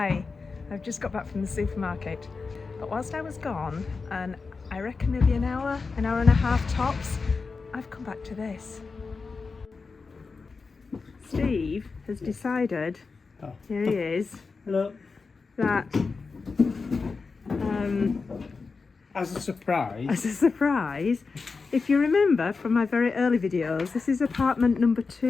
I've just got back from the supermarket, but whilst I was gone, and I reckon maybe an hour and a half tops, I've come back to this. Steve has decided, here he is, Hello. that As a surprise, if you remember from my very early videos, this is apartment number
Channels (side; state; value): right; quieter; 4.5 dB